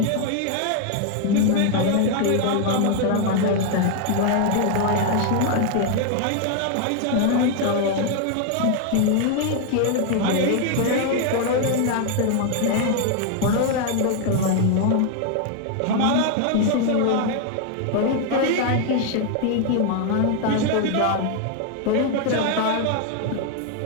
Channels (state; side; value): different; both; correlation 0.00